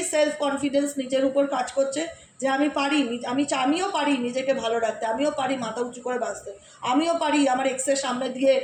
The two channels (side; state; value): both; identical; correlation 1.00